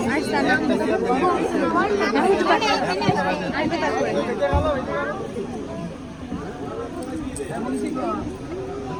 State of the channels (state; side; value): identical; both; correlation 1.00